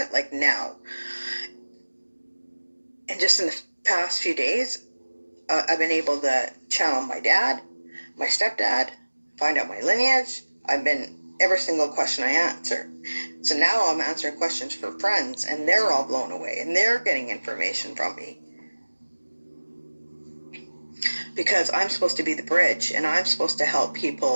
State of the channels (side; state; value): both; inverted; correlation -1.00